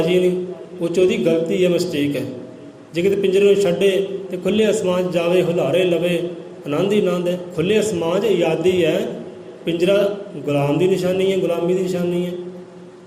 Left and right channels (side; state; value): both; identical; correlation 1.00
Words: ਨਹੀਂ। ਉਹ 'ਚ ਉਹਦੀ ਗਲਤੀ ਹੈ, ਮਿਸਟੇਕ ਹੈ। ਜੇ ਕਿਤੇ ਪਿੰਜਰੇ ਨੂੰ ਛੱਡੇ ਤੇ ਖੁੱਲ੍ਹੇ ਅਸਮਾਨ 'ਚ ਜਾਵੇ, ਹੁਲਾਰੇ ਲਵੇ, ਆਨੰਦ ਹੀ ਆਨੰਦ ਹੈ। ਖੁੱਲ੍ਹੇ ਅਸਮਾਨ 'ਚ ਆਜ਼ਾਦੀ ਹੈ। ਪਿੰਜਰਾ ਗੁਲਾਮ ਦੀ ਨਿਸ਼ਾਨੀ ਹੈ, ਗੁਲਾਮੀ ਦੀ ਨਿਸ਼ਾਨੀ ਹੈ।